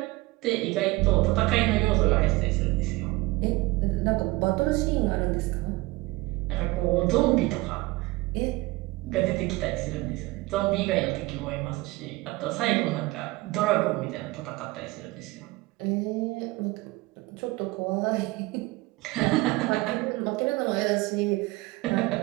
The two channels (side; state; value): left; quieter; 21.1 dB